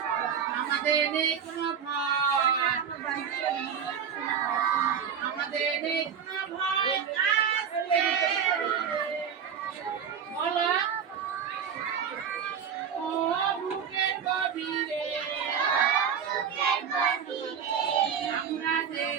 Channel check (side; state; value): left; quieter; 7.6 dB